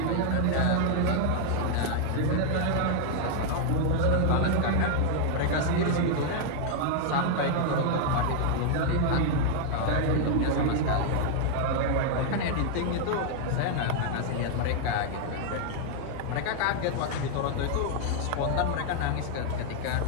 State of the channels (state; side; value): different; both; correlation 0.00